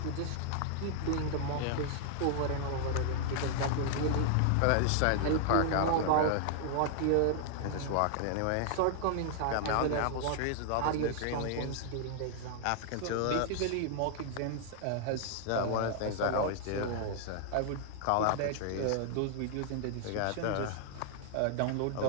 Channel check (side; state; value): both; different; correlation -0.01